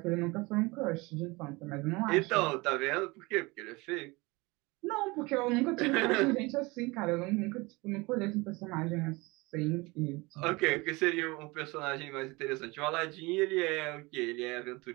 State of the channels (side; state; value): left; quieter; 24.2 dB